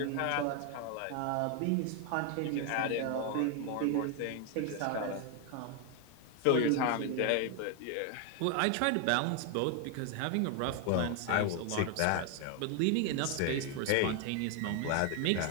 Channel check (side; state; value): both; different; correlation 0.01